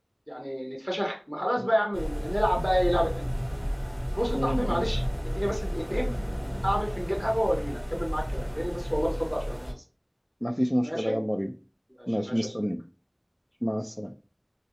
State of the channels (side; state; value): both; identical; correlation 1.00